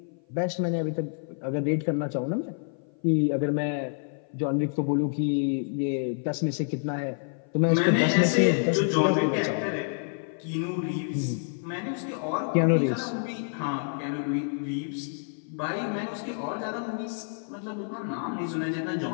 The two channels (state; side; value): silent; right; 55 dB below the other